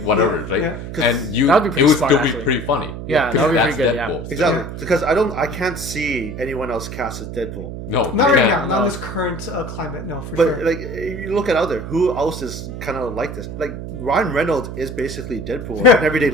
whatever, right? Yeah. And it would still be pretty funny. Yeah, that would be pretty good. Deadpool. Yeah. Exactly, because I can't see anyone else cast as Deadpool. No, not right now. Not in this current climate. No, for sure. But like, you look at out there, who else is kind of like this? Like, Ryan Reynolds is basically Deadpool in everyday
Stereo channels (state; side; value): noise; right; hum, 8 dB below the sound